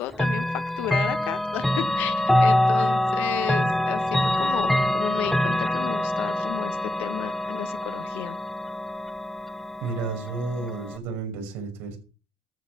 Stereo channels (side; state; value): both; normal; correlation 0.87